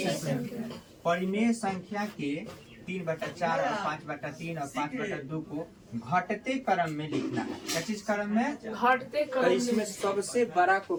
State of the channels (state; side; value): identical; both; correlation 1.00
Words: परिमेय संख्या के 3/4 और 5/3 और 5/2 को घटते क्रम में लिखना है। क्या चीज क्रम में, घटते क्रम। तो इसमें सबसे बड़ा को